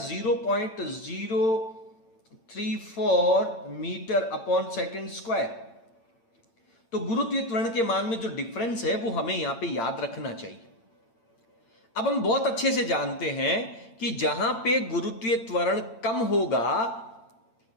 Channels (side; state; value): right; late; 8.8 ms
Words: मीटर अपॉन सेकेंड स्क्वायर। तो गुरुत्वीय त्वरण के मान में जो डिफरेंस है वो हमें यहां पे याद रखना चाहिए। अब हम बहुत अच्छे से जानते हैं कि जहां पे गुरुत्वीय त्वरण कम होगा